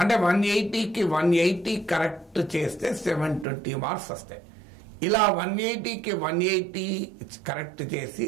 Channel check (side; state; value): left; drops out; at 3.5 s